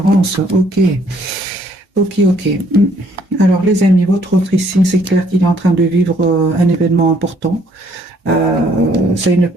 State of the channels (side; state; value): both; normal; correlation 0.64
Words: Ok, ok, ok. Alors, les amis, votre autre ici, c'est clair qu'il est en train de vivre un événement important. C'est une